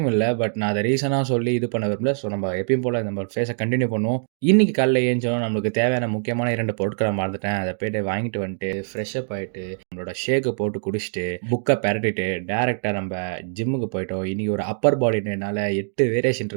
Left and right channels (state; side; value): silent; left; digital silence